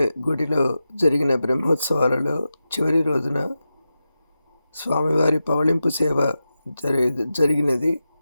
గుడిలో జరిగిన బ్రహ్మోత్సవాలలో చివరి రోజున స్వామివారి పవళింపు సేవ జరిగినది.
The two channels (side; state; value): both; inverted; correlation -0.91